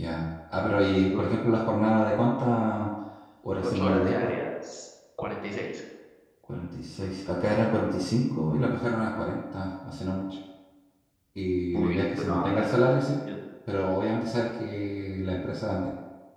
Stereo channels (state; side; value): identical; both; correlation 1.00